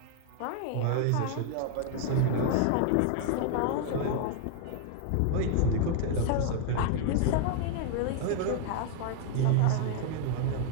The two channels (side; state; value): both; different; correlation 0.00